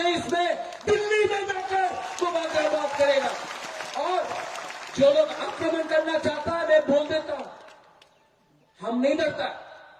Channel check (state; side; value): identical; both; correlation 1.00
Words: में दिल्ली में जाकर बुबागरा बात करेगा। और जो लोग आक्रमण करना चाहता है, मैं बोल देता हूं, हम नहीं डरता।